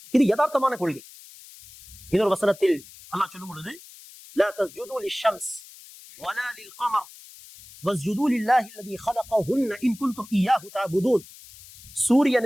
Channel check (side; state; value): left; noise; hiss, 20 dB below the sound